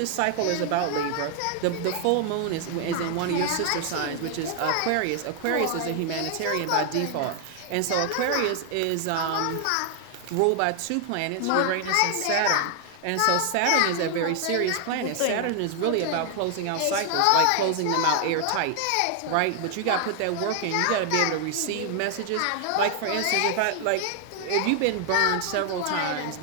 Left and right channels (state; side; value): different; both; correlation 0.00